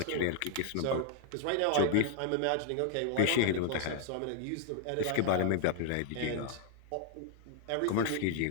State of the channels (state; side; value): different; both; correlation 0.00